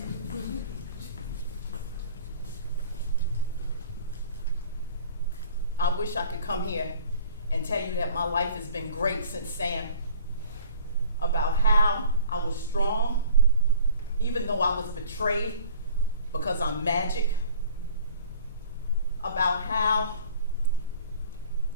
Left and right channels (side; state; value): both; inverted; correlation -0.48